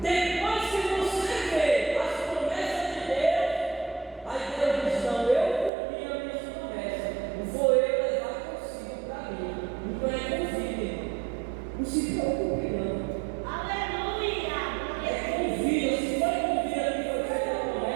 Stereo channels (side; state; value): left; drops out; at 5.7 s